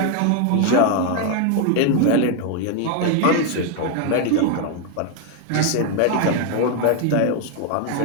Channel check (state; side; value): different; both; correlation 0.01